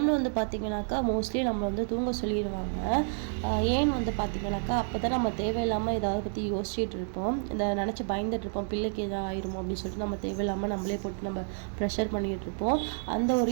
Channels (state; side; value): silent; left; 58 dB below the other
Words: வந்து பார்த்திங்கனாக்கா மோஸ்ட்லி நம்மளை வந்து தூங்க சொல்லிடுவாங்க. ஏன்னு வந்து பார்த்திங்கனாக்கா அப்போ தான் நம்ம தேவையில்லாமல் ஏதாவது பற்றி யோசிச்சுட்டு இருப்போம், இதை நினச்சி பயந்துட்டு இருப்போம், பிள்ளைக்கு எதாவது ஆயிருமோ அப்படின்னு சொல்லிட்டு நம்ம தேவையில்லாமல் நம்மளே போட்டு நம்ம ப்ரெஷர் பண்ணிகிட்டு இருப்போம். அந்த ஒரு